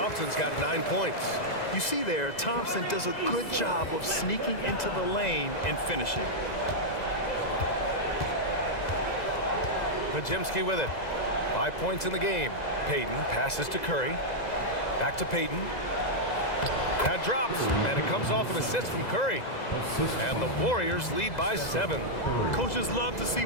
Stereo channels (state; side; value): late; right; 2.0 ms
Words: got 9 points. You see there, Thompson does a good job of sneaking into the lane and finishing. Podziemski with it. 5 points in the game. Payton passes to Curry. Back to Payton. That drops, and it comes off an assist from Curry. And the Warriors lead by 7. Coaches love to see